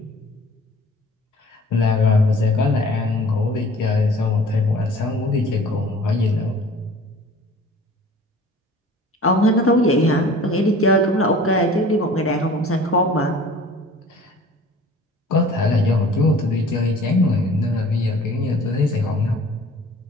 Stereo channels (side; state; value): both; normal; correlation 0.47